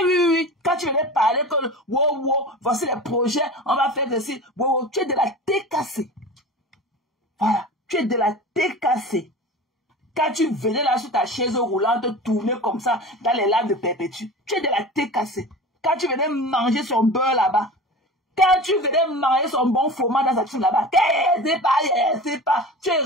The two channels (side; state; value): both; normal; correlation 0.34